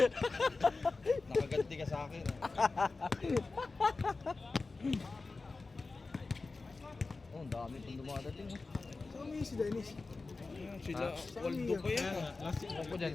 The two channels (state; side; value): quieter; right; 3.8 dB